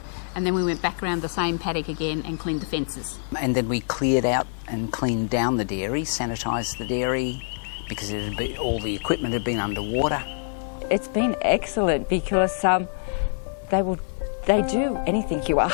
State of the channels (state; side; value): silent; right; digital silence